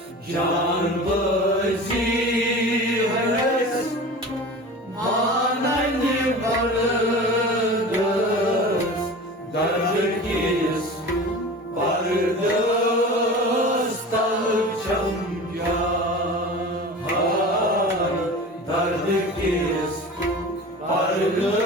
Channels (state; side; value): normal; both; correlation 0.35